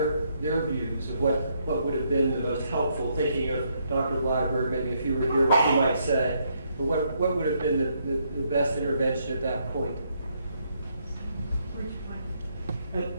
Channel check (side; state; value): both; inverted; correlation -0.74